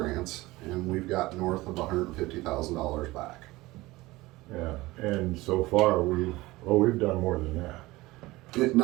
and we've got north of $150,000 back. Yeah, and so far we've done more than that.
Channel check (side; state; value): left; quieter; 19.7 dB